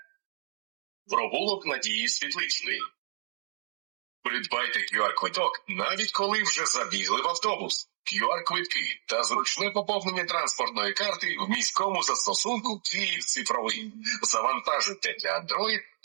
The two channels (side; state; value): left; silent; digital silence